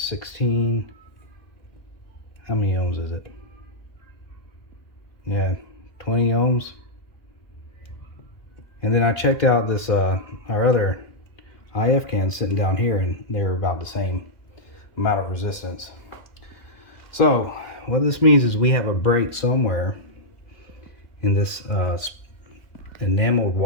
16. How many ohms is it? Yeah, 20 ohms. And then I checked out this our other IF cans sitting down here, and they're about the same amount of resistance. So what this means is we have a break somewhere in this enameled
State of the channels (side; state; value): right; late; 2.4 ms